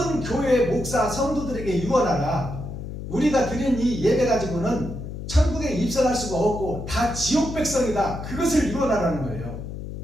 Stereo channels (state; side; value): noise; left; hum, 8 dB below the sound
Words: 교회의 목사 성도들에게 유언하라. 우리가 드린 이 예배 가지고는 천국에 입성할 수가 없고 다 지옥 백성이다. 그것을 유언하라는 거예요.